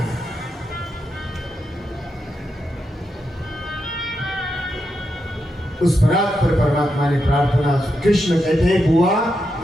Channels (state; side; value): normal; both; correlation 0.85